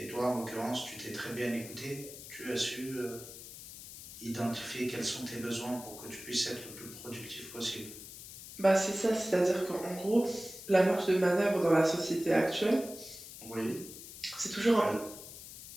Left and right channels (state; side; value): noise; left; hiss, 13 dB below the sound